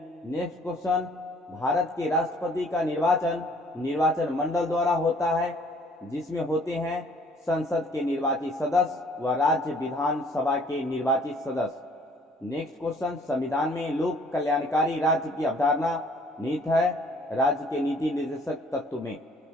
नेक्स्ट क्वेश्चन, भारत के राष्ट्रपति का निर्वाचन मंडल द्वारा होता है, जिसमें होते हैं संसद के निर्वाचित सदस्य व राज्य विधानसभा के निर्वाचित सदस्य। नेक्स्ट क्वेश्चन, संविधान में लोक कल्याणकारी राज्य की अवधारणा निहित है राज्य के नीति निर्देशक तत्व में।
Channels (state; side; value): normal; both; correlation 0.58